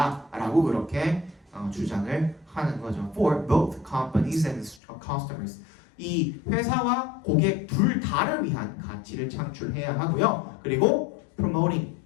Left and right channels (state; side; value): drops out; right; at 4.8 s